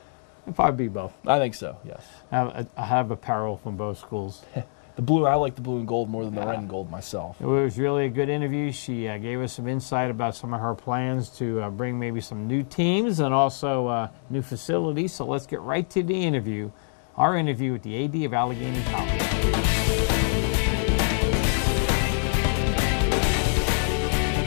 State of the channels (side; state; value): right; silent; digital silence